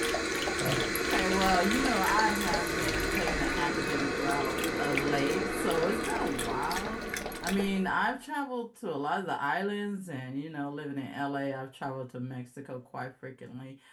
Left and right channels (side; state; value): both; identical; correlation 1.00